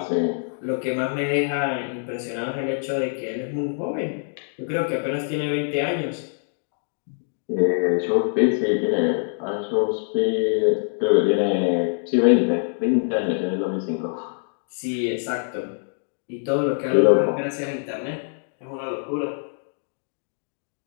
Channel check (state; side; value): silent; right; digital silence